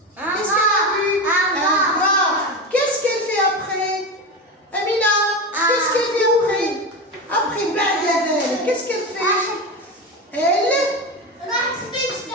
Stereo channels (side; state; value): both; normal; correlation 0.21